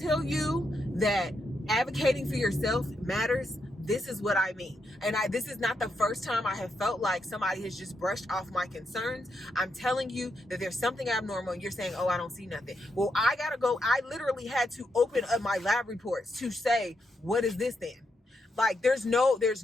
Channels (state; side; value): normal; both; correlation 0.82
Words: you that advocating for yourself matters, this is what I mean. And this is not the first time I have felt like somebody has just brushed off my concerns. I'm telling you that there's something abnormal and you're saying, oh, I don't see nothing. Well, I gotta go. I literally had to open up my lab reports to say, what is this then? Like, there's no